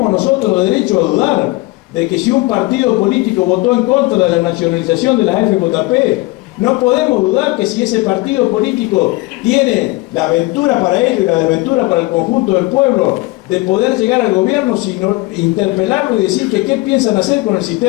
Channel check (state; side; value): quieter; right; 21.8 dB